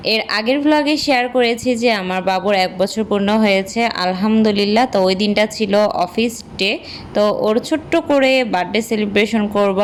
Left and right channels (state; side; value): identical; both; correlation 1.00